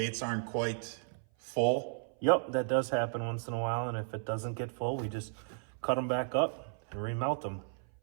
aren't quite full? Yep, that does happen once in a while, and if it doesn't get full, we just cut them back up and remelt them.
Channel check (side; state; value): left; silent; 55 dB below the other